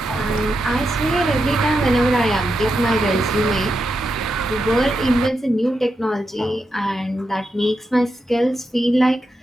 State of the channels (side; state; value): both; normal; correlation 0.86